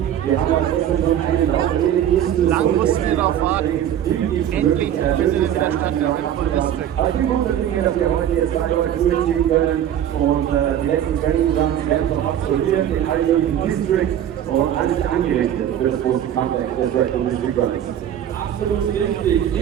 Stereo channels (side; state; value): left; quieter; 10.5 dB